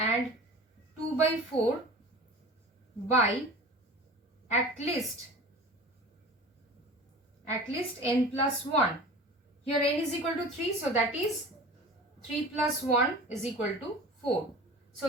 2 by 4 by at least n plus 1. Here n is equal to 3, so that is 3 plus 1 is equal to 4.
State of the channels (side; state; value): both; normal; correlation 0.39